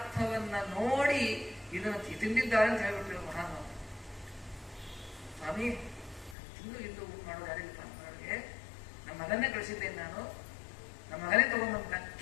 ನೋಡಿ ಇದನ್ನು ತಿಂದಿದ್ದಾರೆ ಅಂತ ಹೇಳ್ಬಿಟ್ರು ಮಹಾನ್. ಸ್ವಾಮಿ, ತಿಂದು ಇದ್ದು ಊಟ ಮಾಡೋದು ಯಾರಿಲ್ಲ ಮಾಡೋರಿಗೆ. ನಮ್ಮ ಮಗನ್ನೇ ಕಳಿಸಿದ್ದೇನೆ ನಾನು, ನಮ್ಮ ಮಗನೇ ತಗೊಂಡ್ಬಂತ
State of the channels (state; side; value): drops out; right; at 6.4 s